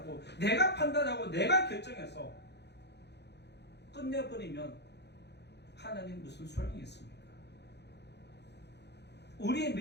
내가 판단하고 내가 결정해서 끝내버리면 하나님 무슨 소용이 있습니까? 우리의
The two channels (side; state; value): right; late; 0.49 ms